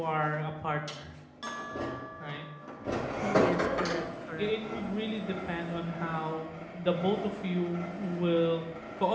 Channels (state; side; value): identical; both; correlation 1.00